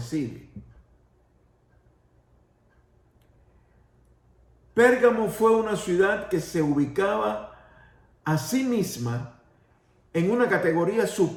Pérgamo fue una ciudad que se ubicaba a sí misma en una categoría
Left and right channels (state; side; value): identical; both; correlation 1.00